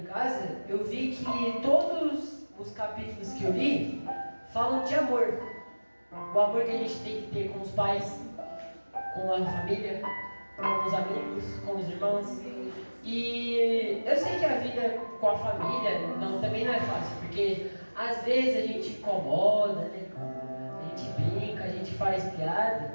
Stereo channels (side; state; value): both; inverted; correlation -1.00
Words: casa, eu vi que todos os capítulos que eu li falam de amor. O amor que a gente tem que ter com os pais, com a família, com os amigos, com os irmãos. E eu sei que a vida com a família também não é fácil, porque às vezes a gente incomoda, né? A gente brinca, a gente faz piada